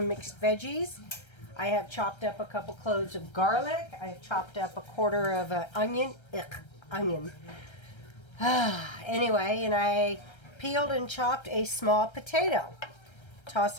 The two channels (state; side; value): late; right; 1.3 ms